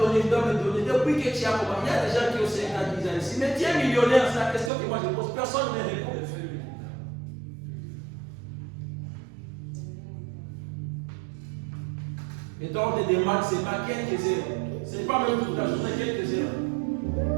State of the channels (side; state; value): left; drops out; at 4.7 s